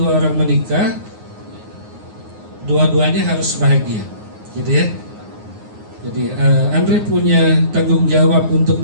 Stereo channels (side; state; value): left; late; 9.6 ms